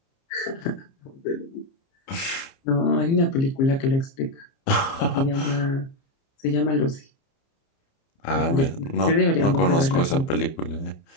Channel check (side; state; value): right; late; 30 ms